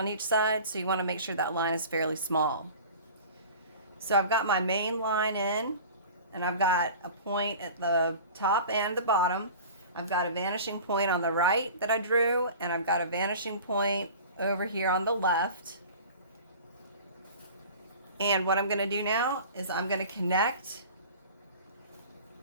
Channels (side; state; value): both; inverted; correlation -0.40